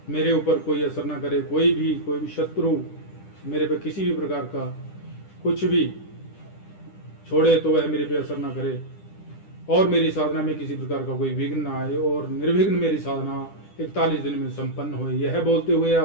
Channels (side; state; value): right; late; 10 ms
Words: मेरे ऊपर कोई असर ना करे। कोई भी शत्रु मेरे पे किसी भी प्रकार का कुछ भी छोड़े तो वह मेरे पे असर ना करे, और मेरी साधना में किसी प्रकार का कोई विघ्न ना आए, और निर्विघ्न मेरी साधना 41 दिन में संपन्न हो। यह बोलते हुए